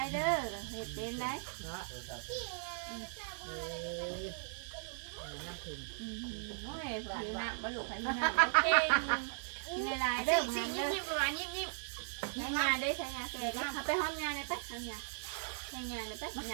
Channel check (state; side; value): silent; left; 53 dB below the other